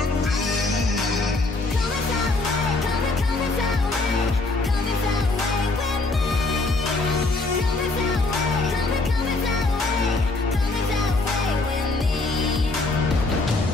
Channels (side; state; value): right; quieter; 3.2 dB